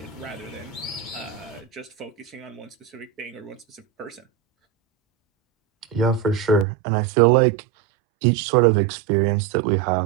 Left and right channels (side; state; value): left; drops out; at 6.7 s